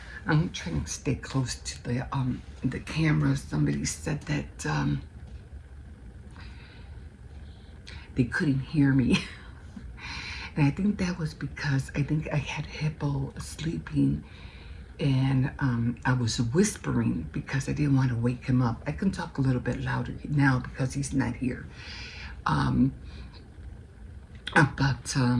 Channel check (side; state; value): both; identical; correlation 1.00